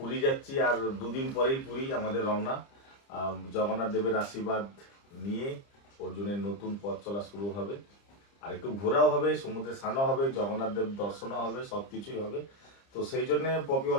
যাচ্ছি, আর দুদিন পরেই পুরী আমাদের রওনা। জগন্নাথ দেবের আশীর্বাদ নিয়ে অর্জুনের নতুন পথ চলা শুরু হবে, আর একটু ঘোরাও হবে, সমুদ্রে স্নানও হবে, জগন্নাথ দেব দর্শনও হবে, সব কিছুই হবে। তো সেই জন্যে পপি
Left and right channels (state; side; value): late; right; 30 ms